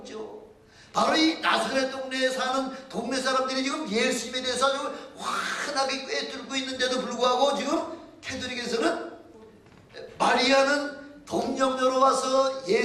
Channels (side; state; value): both; identical; correlation 1.00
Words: 바로 이 나사렛 동네에 사는 동네 사람들이 지금 예수님에 대해서 아주 환하게 꿰뚫고 있는데도 불구하고 지금 캐톨릭에서는 마리아는 동정녀로 와서